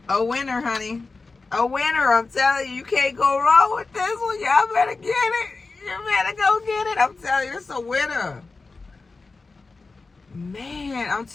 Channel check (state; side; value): quieter; right; 3.9 dB